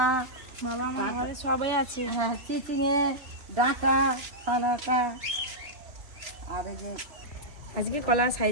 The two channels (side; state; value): left; late; 3.0 ms